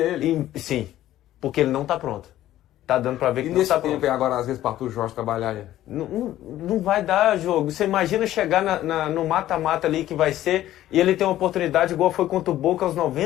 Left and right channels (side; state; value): right; quieter; 13.6 dB